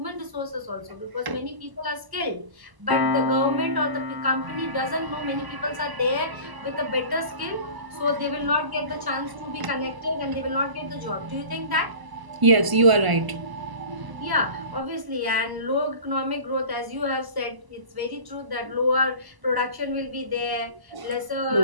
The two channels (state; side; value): late; left; 1.0 ms